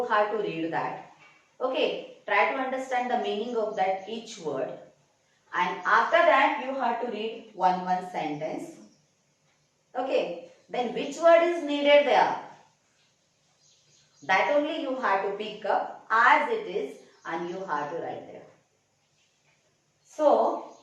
have to read that. Okay, try to understand the meaning of that each word. And after that, you have to read one sentence. Okay, then which word is needed there? That only you have to pick up as it is and you have to write there. So,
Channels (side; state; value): both; identical; correlation 1.00